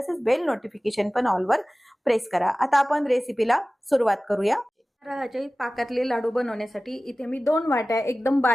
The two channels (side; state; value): both; normal; correlation 0.97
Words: बेल नोटिफिकेशन पण ऑल वर प्रेस करा। आता आपण रेसिपीला सुरुवात करूया। रव्याचे पाकातले लाडू बनवण्यासाठी इथे मी 2 वाट्या एकदम